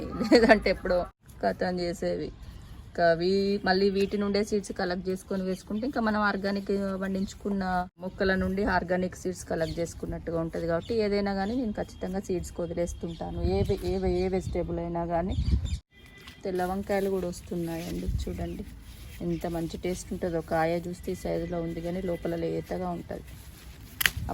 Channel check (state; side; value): identical; both; correlation 1.00